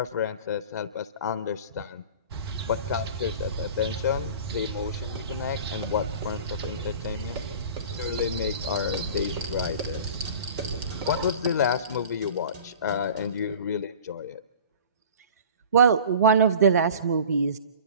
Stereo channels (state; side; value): inverted; both; correlation -0.41